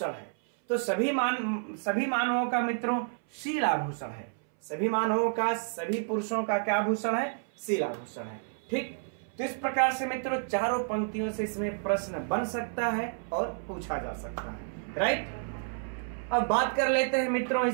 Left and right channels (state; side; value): silent; left; 58 dB below the other